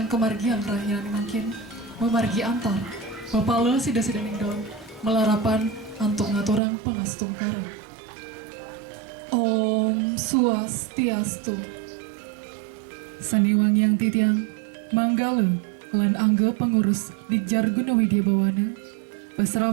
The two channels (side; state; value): left; drops out; at 6.6 s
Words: kemargian rahian makin, memargi antar, mapala sida-sidaning daun, melarapan, antuk ngaturang pangastung kara. Om Swastiastu. Saniwang yang titiang, manggala, lan angga pengurus Dikjar Gunawidya Bawana,